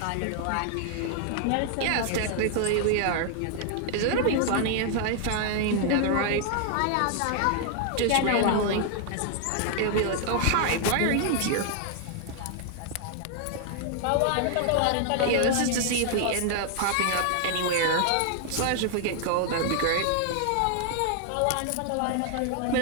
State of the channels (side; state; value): both; different; correlation 0.00